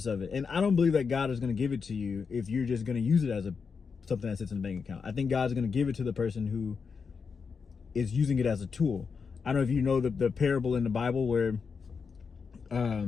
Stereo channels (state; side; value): quieter; right; 5.6 dB